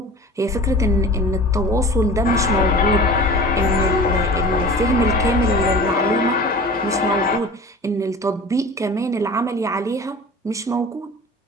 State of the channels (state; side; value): normal; both; correlation 0.39